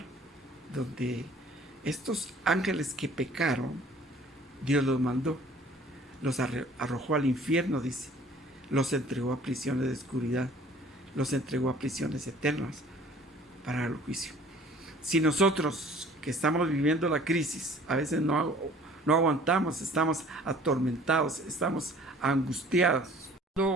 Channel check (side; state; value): both; normal; correlation 0.52